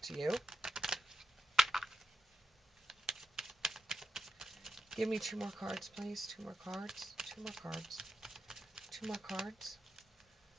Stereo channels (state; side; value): normal; both; correlation 0.85